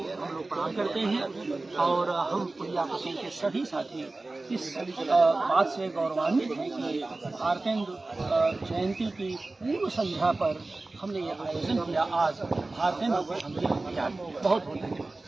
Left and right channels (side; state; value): left; quieter; 3.2 dB